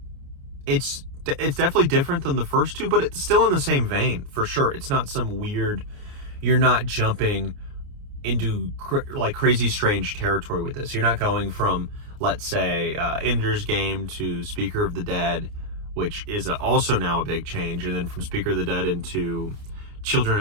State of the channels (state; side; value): late; left; 29 ms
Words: definitely different than the first two, but it's still in the same vein, for sure. It's not some weird, you're not jumping into like crazy strange territory with this. You're not going from, let's say, Ender's Game to Speaker of the Dead, which is also now a big change, and then from Speaker of the Dead into